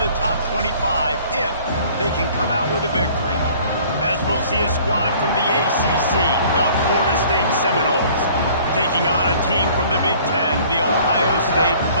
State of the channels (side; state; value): both; inverted; correlation -0.52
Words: top 25 if they can come out with a victory. As we'll see a squad from the ACC, the Florida State Seminoles, taking on a team from the Big Ten, the Ohio State